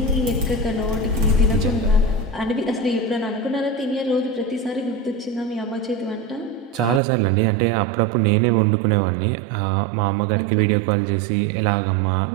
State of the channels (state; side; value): drops out; left; at 7.0 s